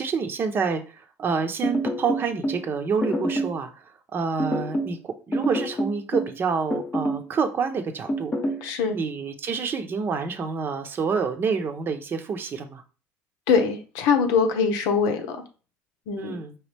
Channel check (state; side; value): normal; both; correlation 0.50